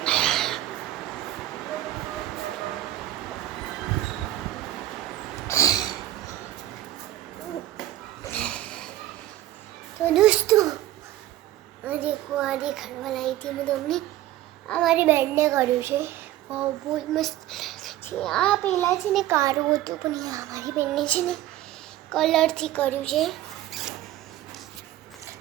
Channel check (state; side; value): quieter; left; 14.3 dB